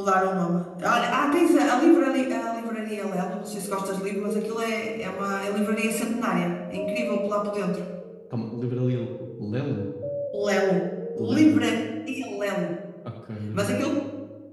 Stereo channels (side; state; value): both; identical; correlation 1.00